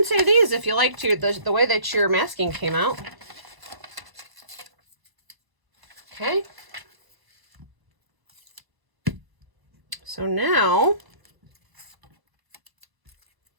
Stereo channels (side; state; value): left; late; 1.0 ms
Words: save these if you like to, the way that your masking came out. Okay. So now,